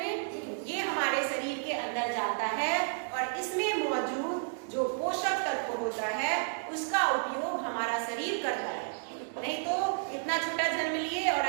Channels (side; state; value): left; silent; 56 dB below the other